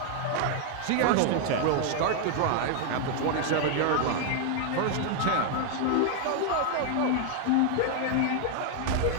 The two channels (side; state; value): both; different; correlation 0.00